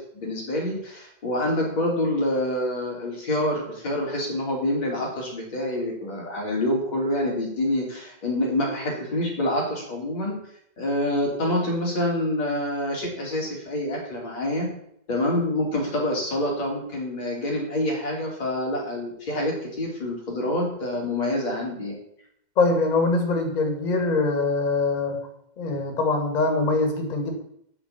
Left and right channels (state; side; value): late; right; 2.1 ms